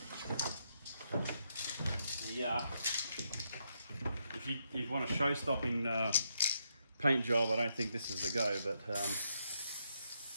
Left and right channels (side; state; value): both; inverted; correlation -0.79